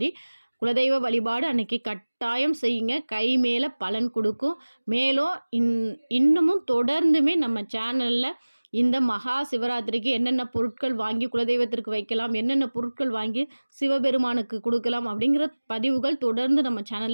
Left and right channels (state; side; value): inverted; both; correlation -1.00